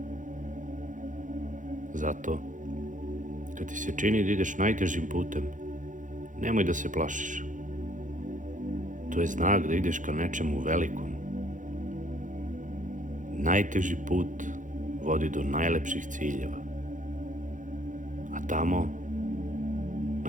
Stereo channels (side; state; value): left; late; 0.37 ms